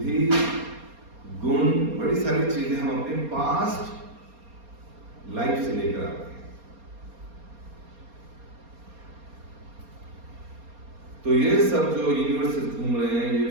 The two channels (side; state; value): left; late; 4.3 ms